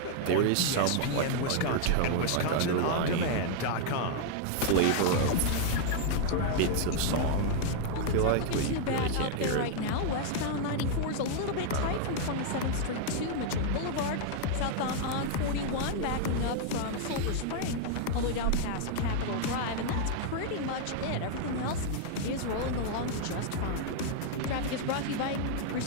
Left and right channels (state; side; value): different; both; correlation 0.00